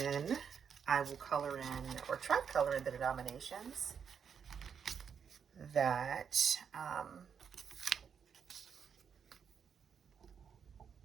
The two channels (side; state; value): left; quieter; 7.1 dB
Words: I will color in, or try to color in, the denominations that